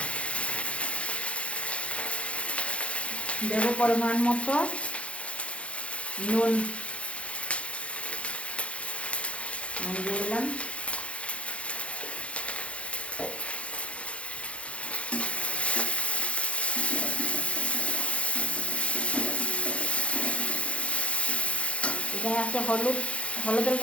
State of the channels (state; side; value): late; right; 0.061 ms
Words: দেবো পরিমাণ মতো নুন, দিয়ে দিলাম, এখানে আছে হলুদের